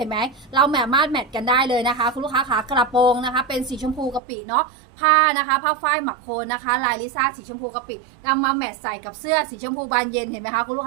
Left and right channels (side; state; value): left; drops out; at 4.2 s